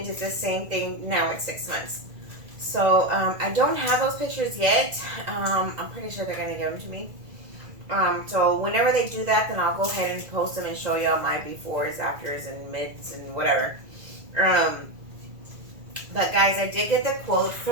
did the same thing now at 6 months. So I don't have those pictures yet. I'm pretty sure they're gonna give them to me. So whenever they do that, then I'll go ahead and post them and show y'all my befores, afters, and mids and whatever. But guys, I did get the quote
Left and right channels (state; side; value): late; left; 2.0 ms